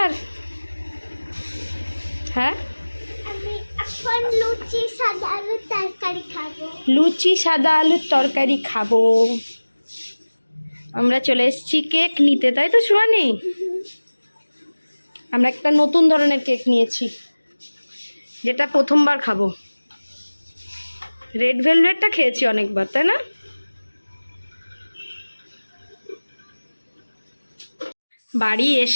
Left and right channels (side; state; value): both; inverted; correlation -1.00